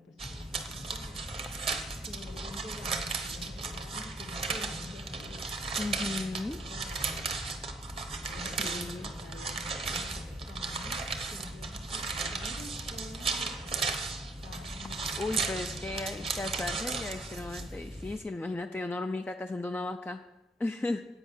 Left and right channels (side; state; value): both; normal; correlation 0.66